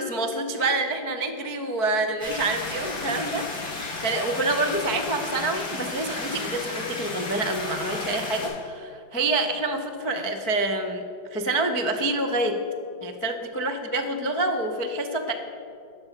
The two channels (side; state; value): right; late; 5.2 ms